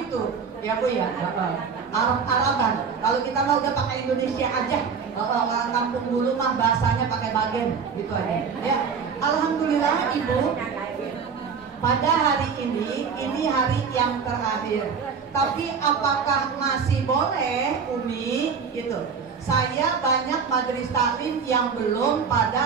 Ya Bu ya. Arab-Araban. Kalau kita mau udah pakai Indonesia aja. Orang kampung dulu mah bahasanya pakai bagen gitu aja. Ya. Alhamdulillah Ibu, pada hari ini hari yang terakhir. Tapi apakah masih boleh, Umi? Gitu. Saya banyak majelis taklim yang belum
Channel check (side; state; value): left; quieter; 6.0 dB